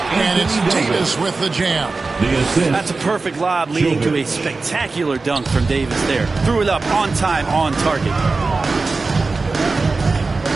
it's Davis with the jam. That's a perfect lob leading to a spectacular dunk from Davis there. Threw it up on time, on target.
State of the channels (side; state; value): left; quieter; 3.9 dB